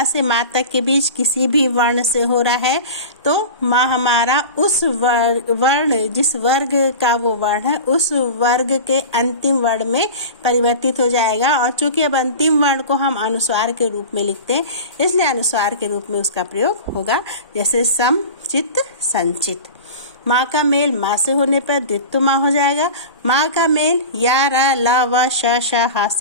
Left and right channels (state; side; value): inverted; both; correlation -0.33